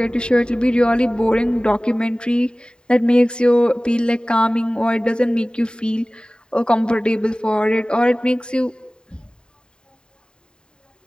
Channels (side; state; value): right; late; 0.049 ms